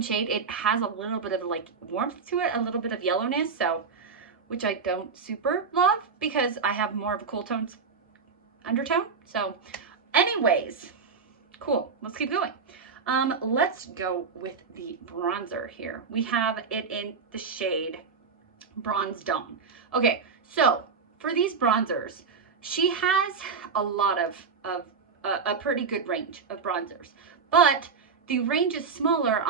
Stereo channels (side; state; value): left; quieter; 5.4 dB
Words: shade, it has a little bit of like warmth to it, a little bit of yellowness, so, which I don't super love because I have more of a cool tones undertone. So anyways, cool, let's keep going. Let's go with the bronzer here. We have it in the shade Bronze Dawn. Okay, so for these bronzers, she has a lot of a pretty good range of bronzers, but the range is smaller